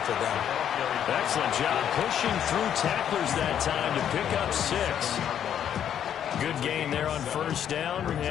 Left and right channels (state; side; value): quieter; right; 9.5 dB